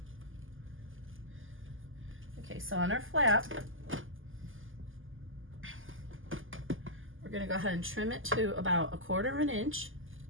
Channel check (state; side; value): late; left; 0.58 ms